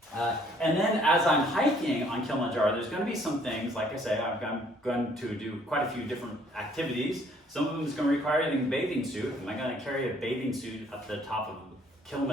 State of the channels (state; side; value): normal; both; correlation 0.62